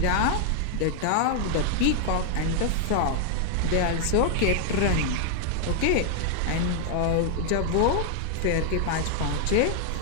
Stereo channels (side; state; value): both; different; correlation 0.00